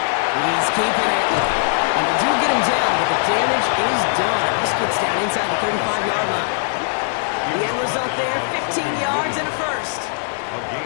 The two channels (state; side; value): silent; right; digital silence